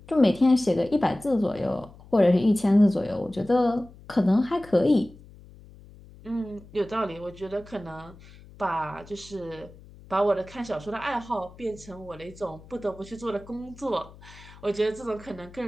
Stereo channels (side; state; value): left; noise; hum, 21 dB below the sound